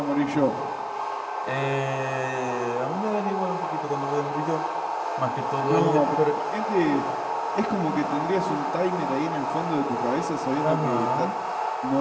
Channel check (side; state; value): both; identical; correlation 1.00